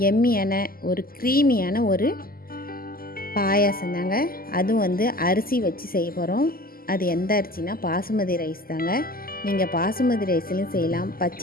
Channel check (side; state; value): right; late; 0.42 ms